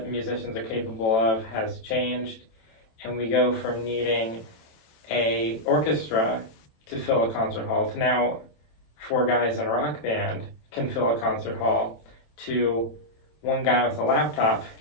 musicians are capable of has changed, and we go from needing a orchestra to fill a concert hall to now 4 guys in a rock band can fill a concert hall to 1 guy with a laptop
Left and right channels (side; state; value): right; late; 27 ms